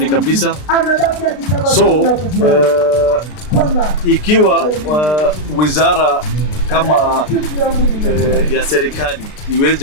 kabisa. So ikiwa wizara kama ya serikali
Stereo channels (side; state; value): right; late; 33 ms